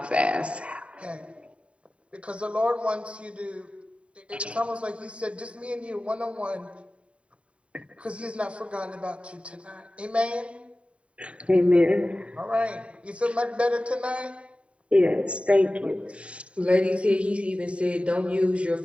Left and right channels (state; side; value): late; left; 0.061 ms